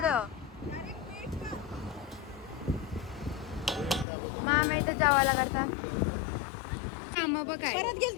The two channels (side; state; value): right; drops out; at 4.0 s